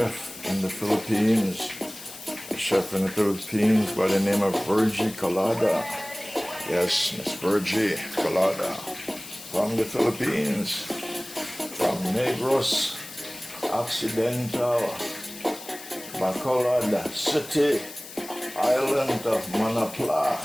in the Philippines. A chef in the Philippines by the name of Virgie Colada. Yes, Miss Virgie Colada from the Philippines, from Negros Occidental, Bacolod City, Island of Manapla,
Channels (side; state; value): left; noise; hiss, 14 dB below the sound